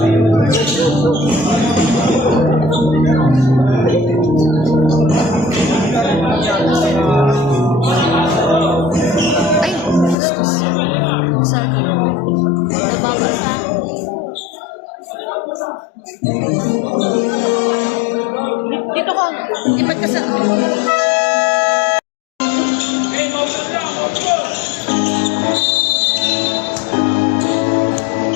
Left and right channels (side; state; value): right; drops out; at 10.2 s